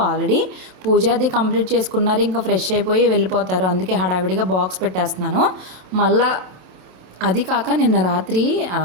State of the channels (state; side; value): late; left; 27 ms